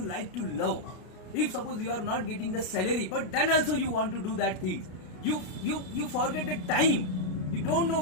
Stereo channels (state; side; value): late; right; 33 ms